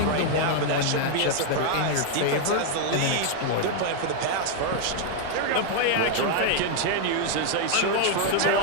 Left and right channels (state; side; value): different; both; correlation 0.00